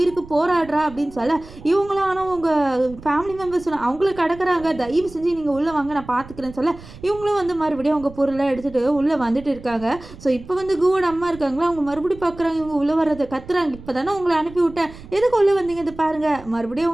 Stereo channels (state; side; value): noise; right; rumble, 18 dB below the sound